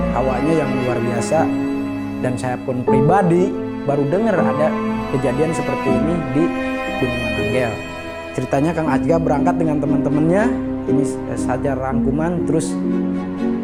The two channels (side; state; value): both; identical; correlation 1.00